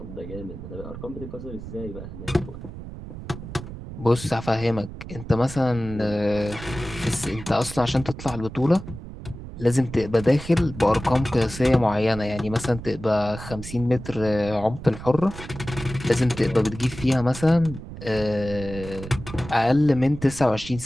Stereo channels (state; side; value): noise; right; rumble, 12 dB below the sound